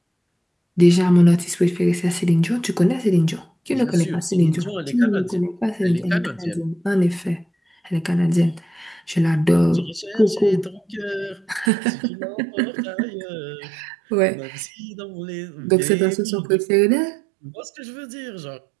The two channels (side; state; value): left; drops out; at 11.7 s